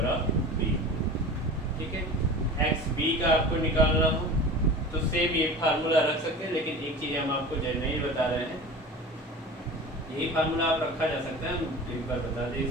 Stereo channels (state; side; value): normal; both; correlation 0.35